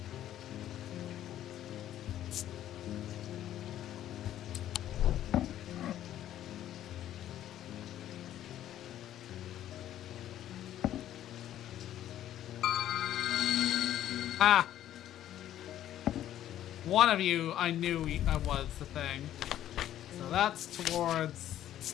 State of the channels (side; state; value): right; quieter; 12.0 dB